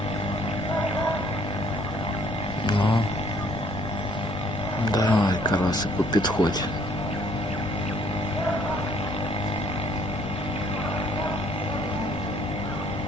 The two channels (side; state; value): both; normal; correlation 0.62